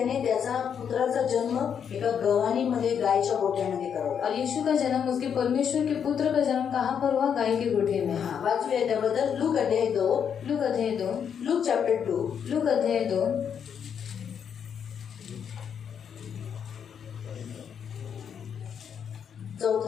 त्याचा पुत्राचा जन्म एका गव्हाणीमध्ये गायच्या गोठ्यामध्ये करवला. और यीशु का जन्म, उसके परमेश्वर के पुत्र का जन्म कहाँ पर हुआ, गाय के गोठे में. हा, वाचूया त्याबद्दल. लूक अध्याय 2. लूक अध्याय 2. Look chapter 2. लूक अध्याय 2.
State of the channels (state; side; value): quieter; right; 7.8 dB